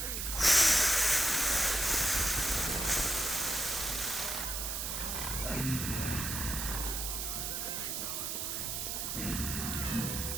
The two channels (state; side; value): noise; right; hiss, 3 dB below the sound